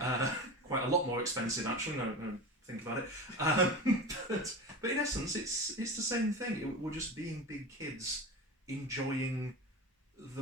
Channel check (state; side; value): normal; both; correlation 0.27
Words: Quite a lot more expensive, actually. No, think about it. But in essence, it's the same thing. We're just being big kids, enjoying the